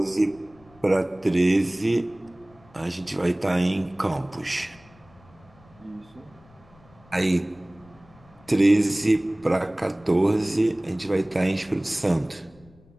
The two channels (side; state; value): left; noise; rumble, 27 dB below the sound